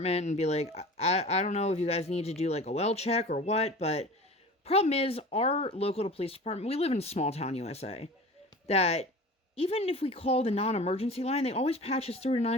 and be like, I don't know if you guys need to do, like, a well check or what, but problem is, our local police department, we live in small town USA, that even if we call the non-emergency line, they always patch us through to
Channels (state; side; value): normal; both; correlation 0.38